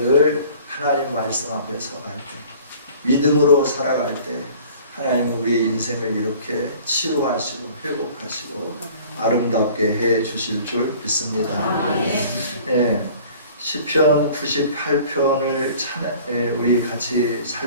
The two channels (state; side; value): inverted; both; correlation -0.48